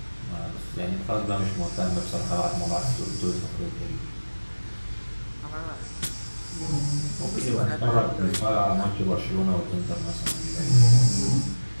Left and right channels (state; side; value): inverted; both; correlation -1.00